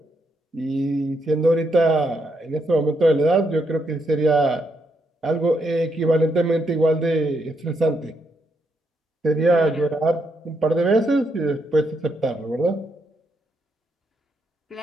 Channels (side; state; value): both; normal; correlation 0.78